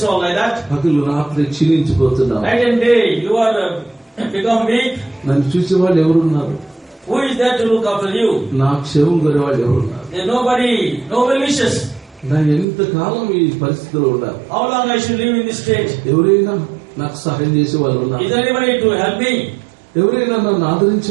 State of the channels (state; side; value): drops out; left; at 12.7 s